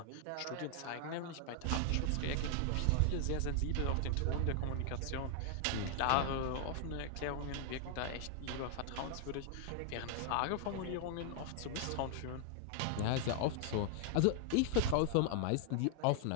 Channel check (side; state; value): both; different; correlation 0.00